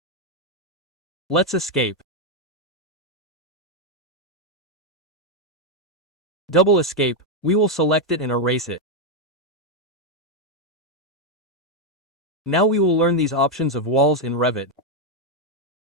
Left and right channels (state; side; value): normal; both; correlation 0.02